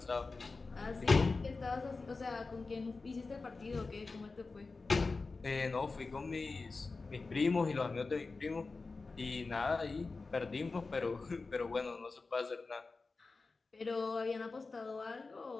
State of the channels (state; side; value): quieter; right; 3.9 dB